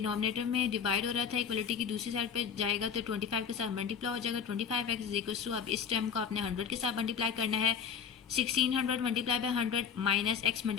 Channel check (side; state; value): right; quieter; 7.4 dB